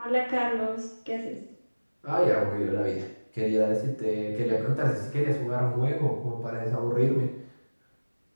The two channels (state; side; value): inverted; both; correlation -1.00